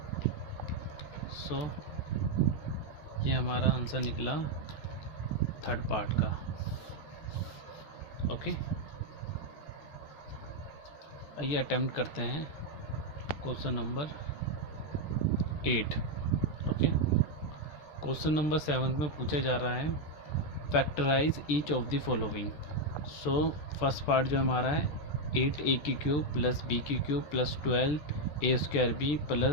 सो ये हमारा आंसर निकला थर्ड पार्ट का। ओके, आइए अटेम्प्ट करते हैं question number 8। Okay, question number 7 में पूछा जा रहा है factorise each of the following. So first part जो हमारा है 8a की क्यूब प्लस b की cube plus 12a square b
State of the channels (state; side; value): late; right; 14 ms